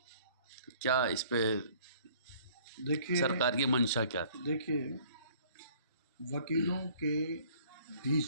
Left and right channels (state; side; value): inverted; both; correlation -0.56